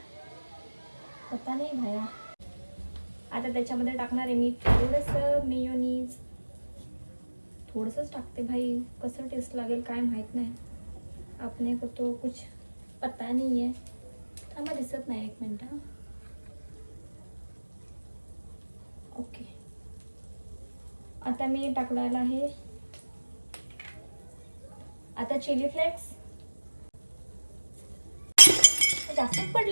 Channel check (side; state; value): both; inverted; correlation -1.00